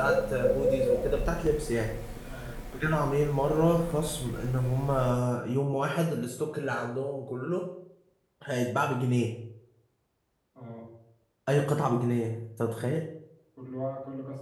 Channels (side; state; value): both; identical; correlation 1.00